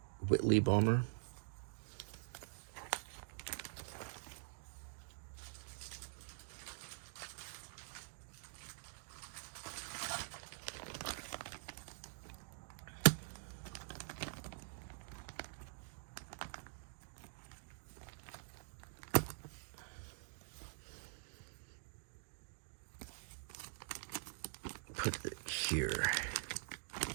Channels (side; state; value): left; silent; digital silence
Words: Whitley bomber. Put it here.